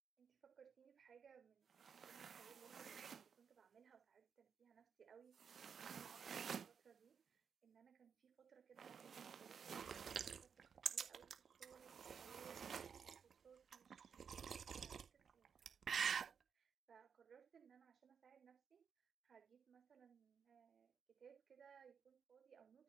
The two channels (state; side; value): quieter; left; 6.8 dB